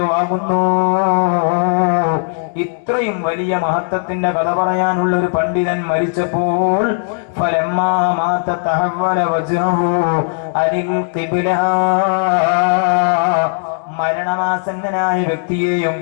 വാങ്ങുന്നു. ഇത്രയും വലിയ മഹത്വത്തിന്റെ കഥ പറയാനുള്ള ഒരു പണ്ഡിതൻ മരിച്ചപ്പോൾ ഫലമ്മാ മാത തഹവ്വല വജ്ഹു അനിൽ ഖിബ്ല, മരണമാസന്നനായ വ്യക്തിയെയും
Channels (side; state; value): right; silent; digital silence